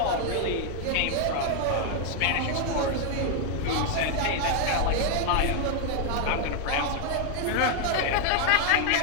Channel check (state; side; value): different; both; correlation 0.00